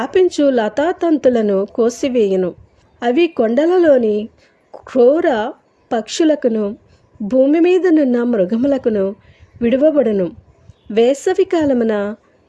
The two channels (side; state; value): both; identical; correlation 1.00